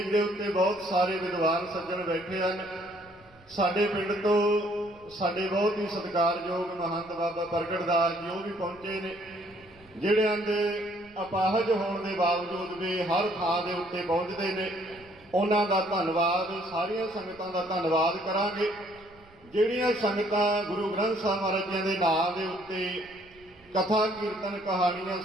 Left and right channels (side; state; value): right; noise; rumble, 27 dB below the sound